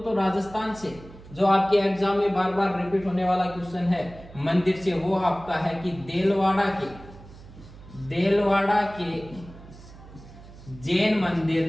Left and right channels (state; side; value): noise; right; hum, 19 dB below the sound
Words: तो राजस्थान से जो आपके एग्जाम में बार बार रिपीट होने वाला क्वेश्चन है मंदिर से, वो आपका है कि देलवाड़ा के जैन